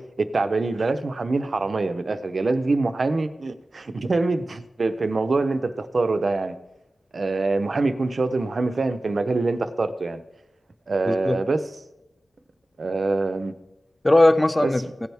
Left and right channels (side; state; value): both; normal; correlation 0.96